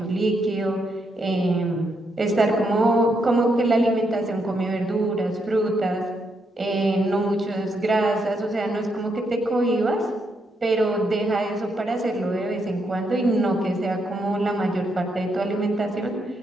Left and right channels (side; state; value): both; normal; correlation 0.78